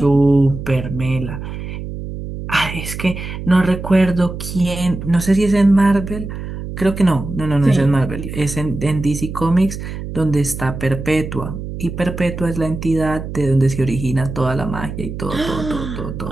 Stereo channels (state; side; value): noise; right; hum, 8 dB below the sound